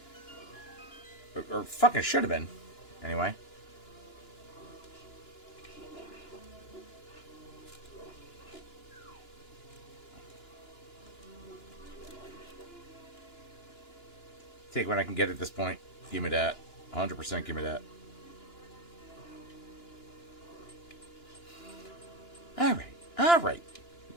Or fucking should have been. Anyway. Take what I can get at this point. Give me that. 100% give me that. Alright. Alright.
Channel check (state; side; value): late; right; 2.9 ms